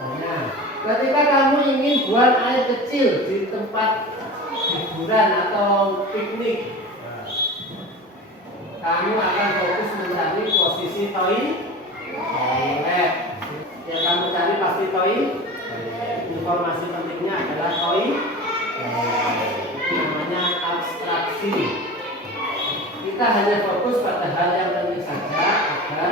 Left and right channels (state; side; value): normal; both; correlation 0.33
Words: ketika kamu ingin buang air kecil di tempat hiburan atau piknik, kamu akan fokus mencari posisi toilet. Yang kamu cari pasti toilet. Informasi pentingnya adalah toilet. Itu namanya abstraksi. Kita hanya fokus pada hal yang penting saja